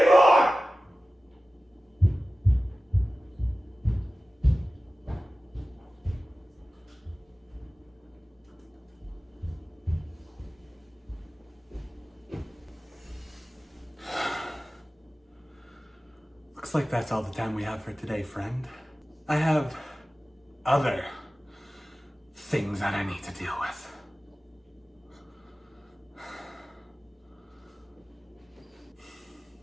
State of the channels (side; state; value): both; normal; correlation 0.96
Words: Looks like that's all the time we have for today, friend. I have other things that I need to deal with.